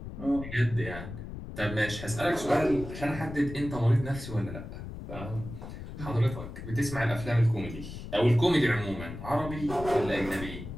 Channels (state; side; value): noise; left; rumble, 10 dB below the sound